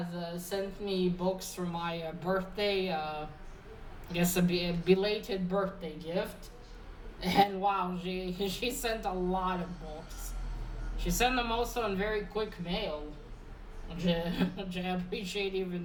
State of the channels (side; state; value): both; identical; correlation 1.00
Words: sent me books for my birthday, I guess a belated birthday gift. And wow, she sent a lot of books. She sent them also in very quick mail, which I appreciate